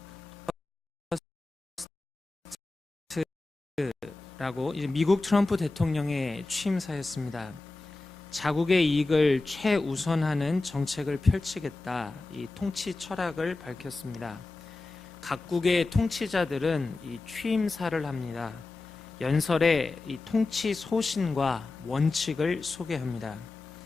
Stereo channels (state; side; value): quieter; right; 3.4 dB